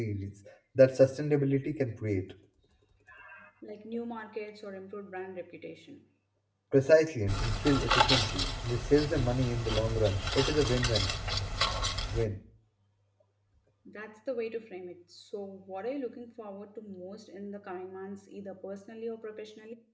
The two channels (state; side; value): identical; both; correlation 1.00